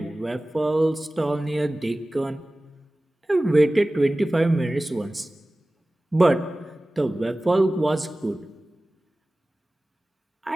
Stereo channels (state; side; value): normal; both; correlation 0.97